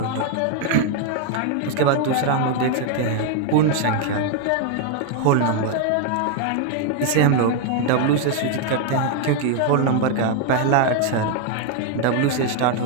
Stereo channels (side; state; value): both; different; correlation 0.01